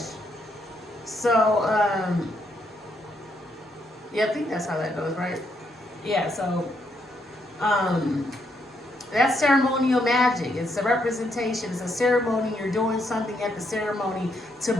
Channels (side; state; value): both; normal; correlation 0.76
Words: So, yeah, I think that's how that goes, right? Yeah, so, that's ceremonial magic. It's a representation. It's a ceremony. You're doing something at the ceremony